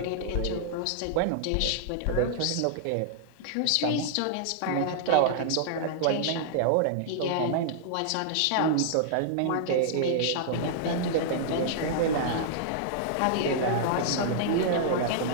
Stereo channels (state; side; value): different; both; correlation -0.01